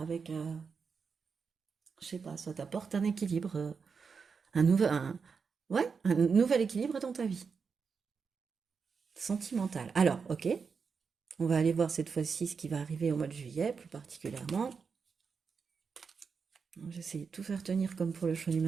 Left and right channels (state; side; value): quieter; left; 5.6 dB